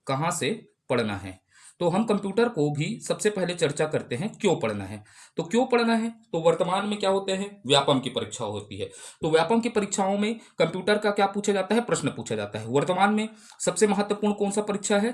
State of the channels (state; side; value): identical; both; correlation 1.00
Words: कहाँ से पढ़ना है। तो हम कंप्यूटर को भी सबसे पहले चर्चा करते हैं क्यों पढ़ना है। तो क्यों पढ़ना है, तो वर्तमान में क्या होते हैं, व्यापम की परीक्षा होती है। तो व्यापम की परीक्षाओं में कंप्यूटर का क्या पूछा जाता है? प्रश्न पूछा जाता है। वर्तमान में सबसे महत्वपूर्ण कौन सा परीक्षा है?